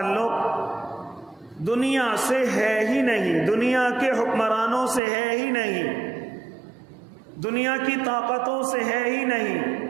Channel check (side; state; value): left; drops out; at 5.0 s